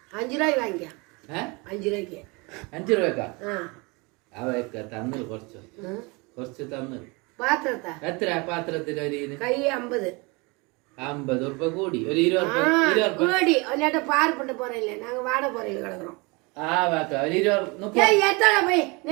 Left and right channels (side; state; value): left; quieter; 27.7 dB